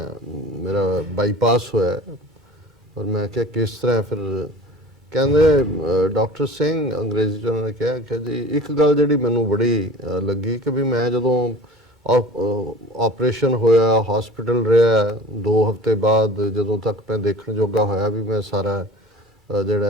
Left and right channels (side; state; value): both; normal; correlation 0.41